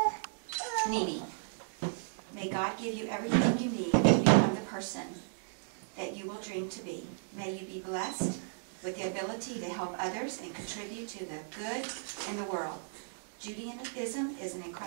Nene, may God give you everything you need to become the person that you will dream to be. May you be blessed with the ability to help others and contribute to the good in the world. Judaism is an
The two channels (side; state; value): left; silent; digital silence